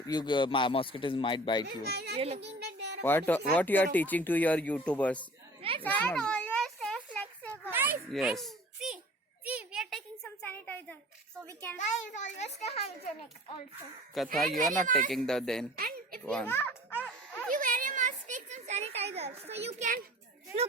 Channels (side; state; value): both; normal; correlation 0.45